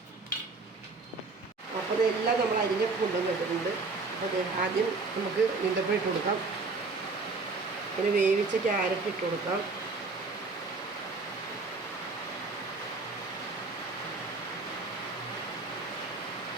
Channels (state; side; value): quieter; left; 3.8 dB